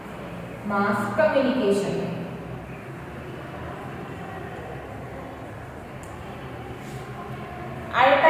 Mass communication. At a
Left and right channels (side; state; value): both; identical; correlation 1.00